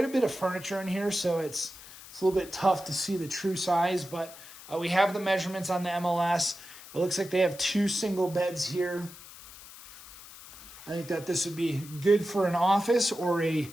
a bit of furniture in here, so it's a little bit tough to see the true size, but we have the measurements on the MLS. It looks like they have 2 single beds here. I think that this would be good for an office or a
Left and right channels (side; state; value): left; noise; hiss, 17 dB below the sound